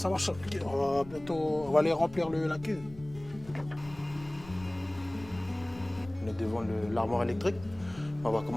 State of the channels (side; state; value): left; noise; rumble, 18 dB below the sound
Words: marche. On va bientôt. On va aller remplir la cuve. On est devant l'armoire électrique. On va